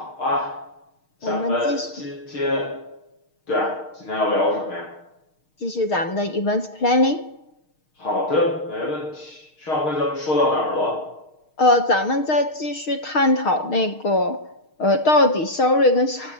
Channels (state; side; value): late; right; 6.5 ms